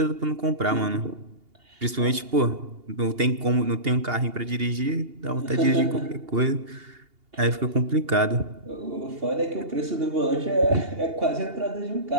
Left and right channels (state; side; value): late; left; 2.8 ms